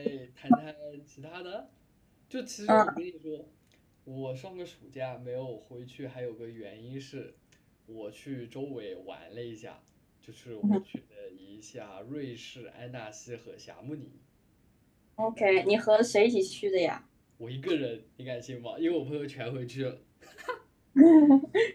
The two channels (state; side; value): identical; both; correlation 1.00